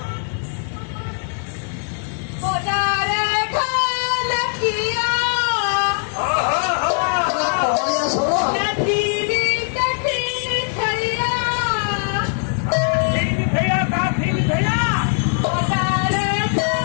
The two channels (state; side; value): silent; right; 60 dB below the other